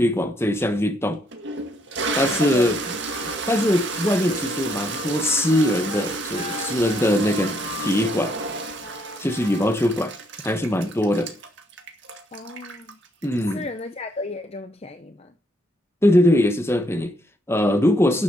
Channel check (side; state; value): both; normal; correlation 0.72